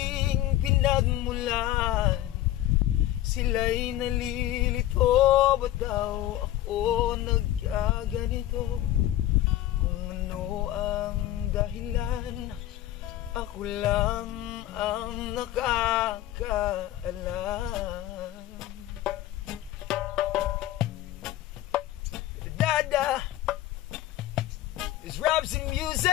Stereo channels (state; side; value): quieter; right; 13.9 dB